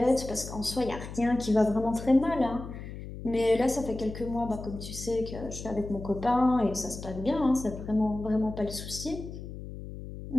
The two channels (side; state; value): left; noise; hum, 10 dB below the sound